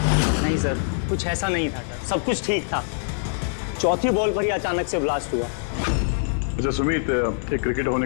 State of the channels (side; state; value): right; silent; digital silence